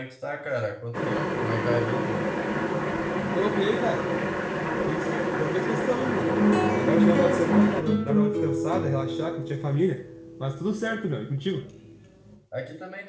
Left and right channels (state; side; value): identical; both; correlation 1.00